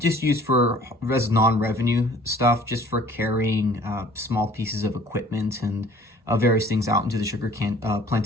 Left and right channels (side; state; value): both; normal; correlation 0.52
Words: used for non-revenue stuff, just for carrying small pieces of equipment and various things out into the sugar